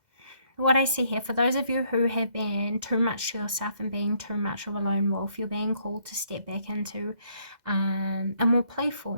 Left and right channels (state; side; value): late; left; 2.0 ms